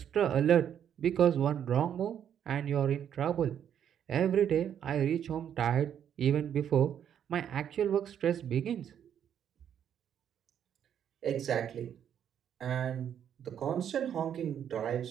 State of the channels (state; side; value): quieter; left; 9.2 dB